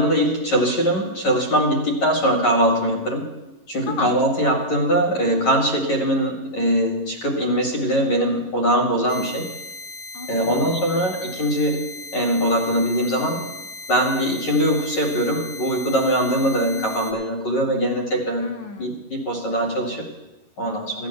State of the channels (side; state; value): right; late; 11 ms